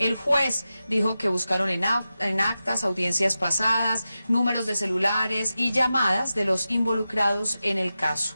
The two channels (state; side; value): inverted; both; correlation -0.93